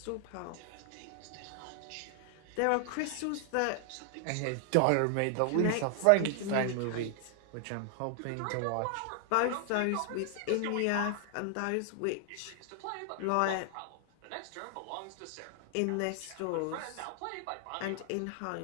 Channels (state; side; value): different; both; correlation 0.00